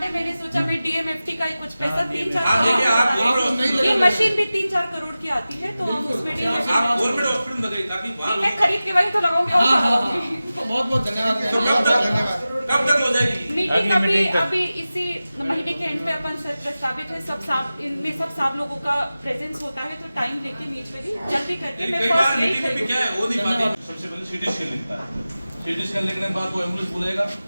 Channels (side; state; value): both; inverted; correlation -0.95